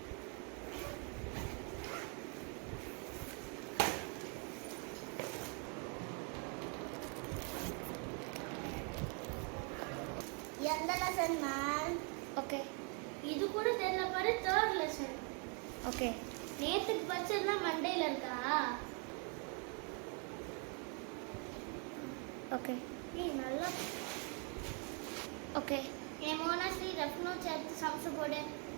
எந்த லெசன் மேம்? ஓகே, இது கூட தெரியல பாரு. 3rd lesson. ஓகே, நேத்துக்கு படிச்சதுலாம் மண்டேல இருக்கா? ஓகே, ஏய் நல்லா. ஓகே, என் மோனாஸ்ரீ ரஃப் நோட்ஸ் எடுத்து சம்ஸ் போடு.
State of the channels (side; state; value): left; quieter; 37.3 dB